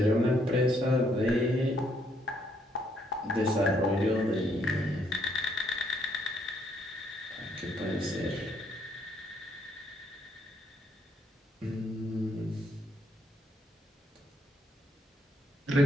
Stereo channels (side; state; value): both; normal; correlation 0.71